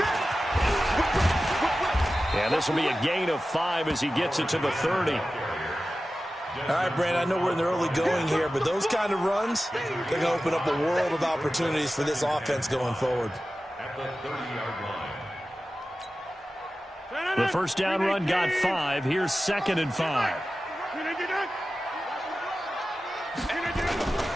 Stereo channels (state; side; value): normal; both; correlation 0.94